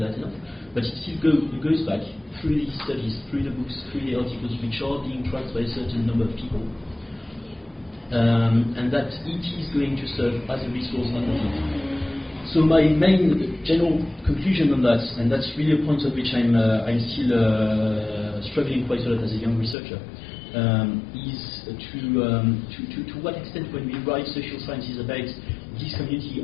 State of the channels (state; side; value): drops out; right; at 19.8 s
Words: enough, but it still goes back through these studies, through the books, through the articles, which are being tracked by a certain number of people. And that it is going to serve as a resource underneath. So my main general conclusion on that, and that's really a point on which I'm still struggling quite a lot as a young researcher, is to what extent when we write social sciences about this community